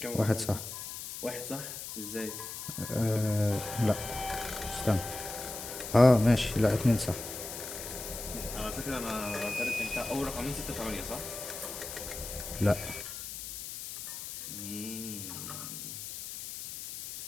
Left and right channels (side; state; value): left; noise; hiss, 8 dB below the sound